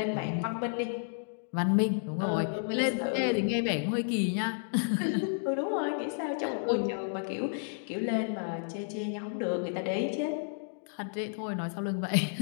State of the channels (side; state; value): right; silent; digital silence